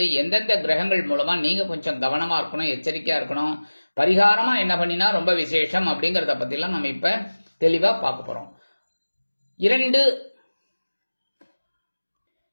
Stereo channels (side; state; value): both; inverted; correlation -1.00